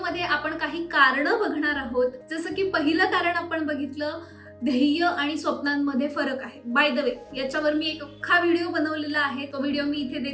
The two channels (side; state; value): both; identical; correlation 1.00